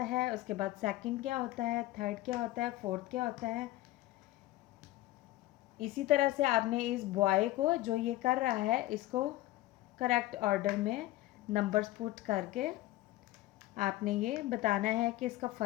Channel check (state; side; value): quieter; right; 16.7 dB